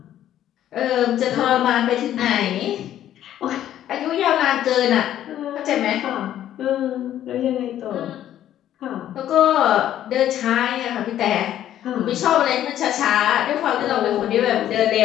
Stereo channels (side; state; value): right; quieter; 11.7 dB